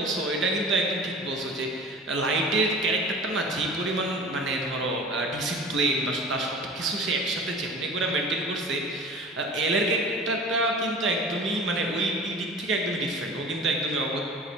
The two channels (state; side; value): normal; both; correlation 0.40